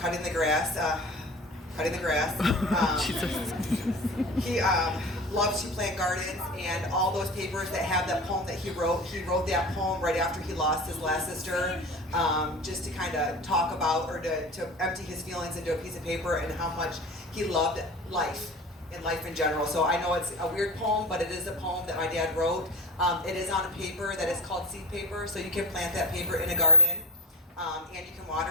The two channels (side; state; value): both; normal; correlation 0.33